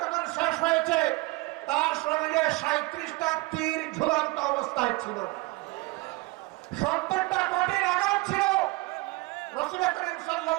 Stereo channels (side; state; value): left; quieter; 22.9 dB